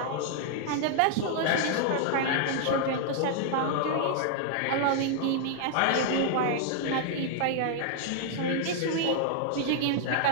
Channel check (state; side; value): different; both; correlation -0.01